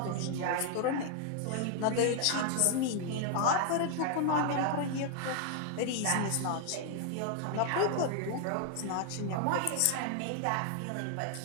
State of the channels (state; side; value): different; both; correlation 0.00